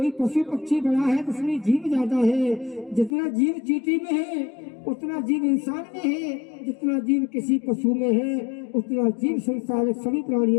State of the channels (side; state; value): right; drops out; at 3.1 s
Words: पशु पक्षी बड़ा है तो उसमें जीव ज्यादा है। जितना जीव चींटी में है उतना जीव इंसान में है, जितना जीव किसी पशु में है उतना जीव संसार सभी